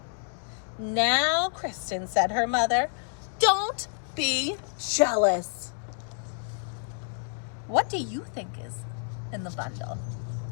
"Now, Kristen," said her mother, "don't be jealous." What do you think is in the bundle?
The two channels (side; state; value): right; silent; 59 dB below the other